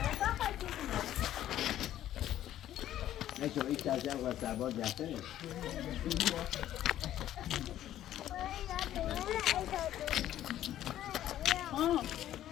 نشو این تازه و سرباز جفته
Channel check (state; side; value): quieter; right; 12.3 dB